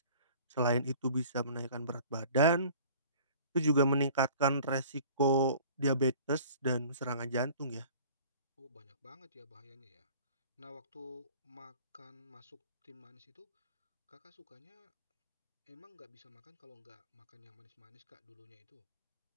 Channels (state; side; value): inverted; both; correlation -0.48